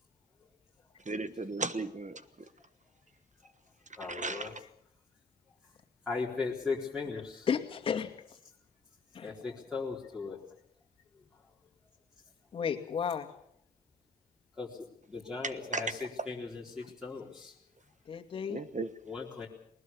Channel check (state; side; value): quieter; right; 3.0 dB